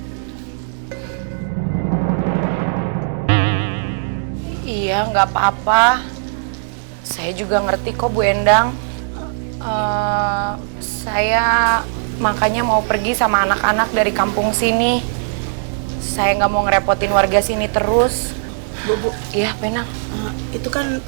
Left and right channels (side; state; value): left; silent; digital silence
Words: Iya, nggak apa-apa. Saya juga ngerti kok, Bu Endang. Saya makanya mau pergi sama anak-anak dari kampung sini. Saya nggak mau ngerepotin warga sini terus. Bu. Iya, Penang. Itu kan